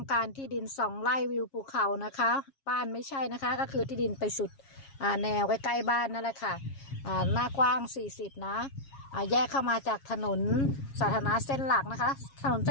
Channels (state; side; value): late; right; 7.3 ms